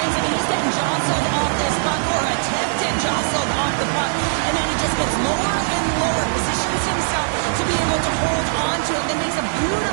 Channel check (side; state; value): left; silent; 56 dB below the other